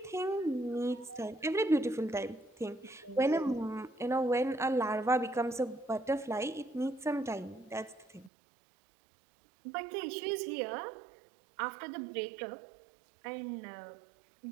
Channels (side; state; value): left; drops out; at 8.3 s